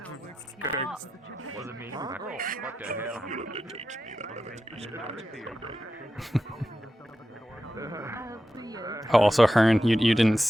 Was it me? What the hell? Oh, also Hearn, you didn't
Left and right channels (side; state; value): both; normal; correlation 0.90